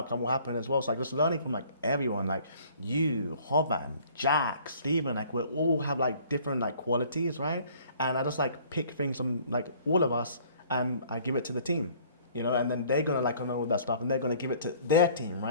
will happen as well. So like just learning from like everyone, like you, Hoban, Jack, Steven, like we all have like different like qualities, right? And I just like pick things from like all of us and I give it to the team, you know, and then they're gonna like know all that stuff and they're gonna give it to their team,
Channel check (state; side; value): inverted; both; correlation -0.55